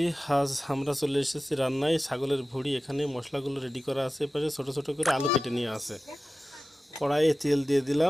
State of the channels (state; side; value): normal; both; correlation 0.95